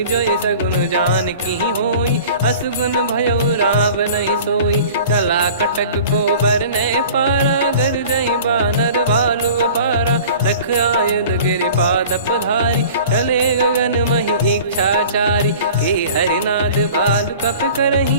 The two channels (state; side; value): inverted; both; correlation -0.43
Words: जोई सगुन जान की होई असुगुन भयो राव नहीं सोई चला कटक को बरने पारा घर जई बानर भालु पारा लख आयद गिरि पाद पधारी चले गगन मही इच्छाचारी के हरिनाथ भालु कप